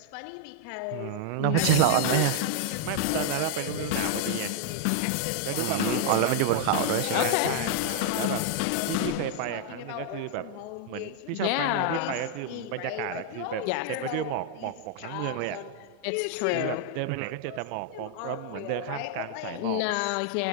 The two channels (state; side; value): different; both; correlation 0.00